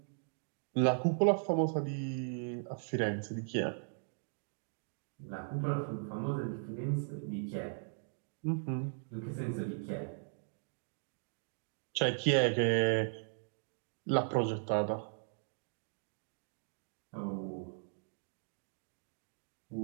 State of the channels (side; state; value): left; silent; digital silence